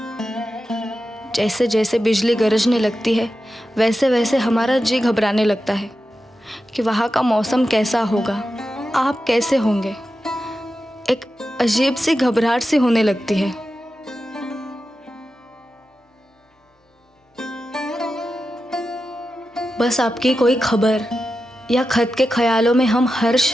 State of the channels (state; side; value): normal; both; correlation 0.91